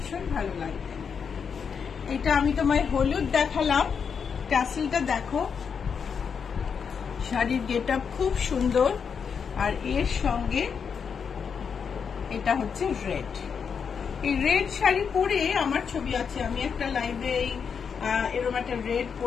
ভালো লাগবে। এটা আমি তোমায় হলুদ দেখালাম, ট্যাসেলটা দেখো, শাড়ির গেট আপ খুব সুন্দর, আর এর সঙ্গে এটা হচ্ছে রেড, এই রেড শাড়ি পরে আমার ছবি আছে, আমি একটা লাইভে এরকম একটা রেড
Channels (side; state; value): right; quieter; 6.5 dB